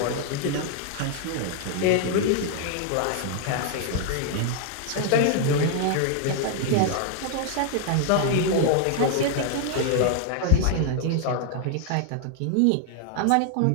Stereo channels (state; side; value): different; both; correlation 0.00